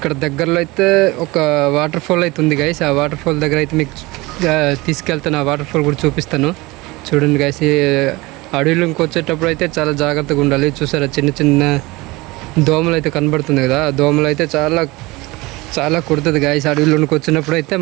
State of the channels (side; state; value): left; quieter; 22.2 dB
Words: అయితే ఒక వాటర్ ఫాల్ అయితే ఉంది గైస్. ఆ వాటర్ ఫాల్ దగ్గర అయితే మీకు తీసుకెళ్తాను. ఆ వాటర్ ఫాల్ కూడా చూపిస్తాను. చూడండి గైస్, అడవిలోకి వచ్చేటప్పుడు అయితే చాలా జాగ్రత్తగా ఉండాలి. చూసారా, చిన్న చిన్న దోమలు అయితే కనబడుతుంది కదా. ఆ దోమలు అయితే చాలా చాలా కుడుతుంది గైస్. అడవిలోకి వచ్చినప్పుడు అయితే